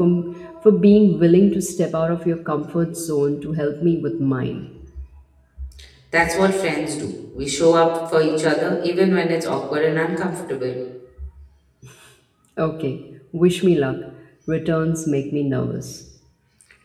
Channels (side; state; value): both; identical; correlation 1.00